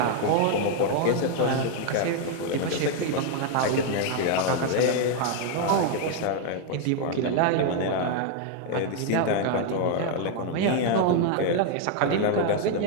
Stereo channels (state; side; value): different; both; correlation 0.00